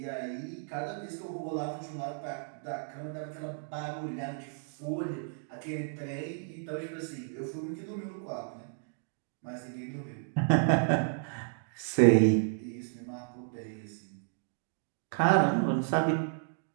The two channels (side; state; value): left; silent; digital silence